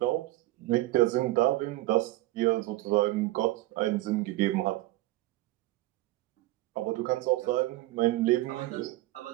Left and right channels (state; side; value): quieter; left; 17.8 dB